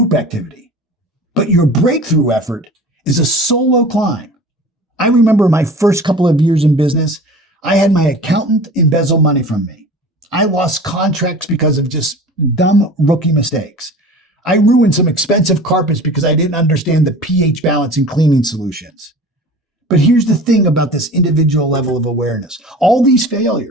activity, but your breakthrough effort is a solo climb. I remember my first couple of years in business, I had my accountant embezzle money from me. I lost contracts because of just dumb rookie mistakes. I ruined some expensive carpets because I didn't understand the pH balance in cleaning solutions. But here's the thing about this individual level of awareness. All these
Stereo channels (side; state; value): both; normal; correlation 0.39